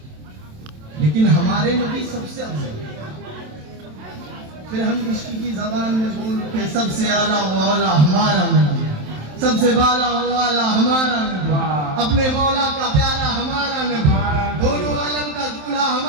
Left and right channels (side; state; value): left; late; 27 ms